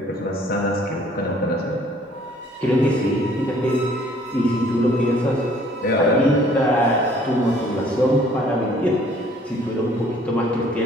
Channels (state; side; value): normal; both; correlation 0.58